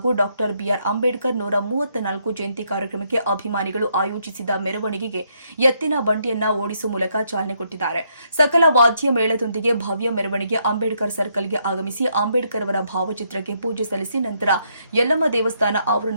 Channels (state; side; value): inverted; both; correlation -0.74